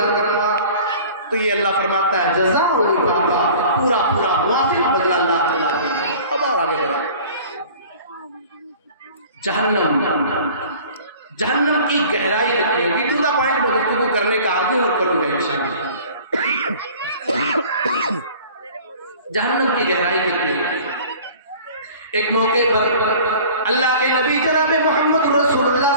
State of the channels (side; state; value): both; inverted; correlation -0.46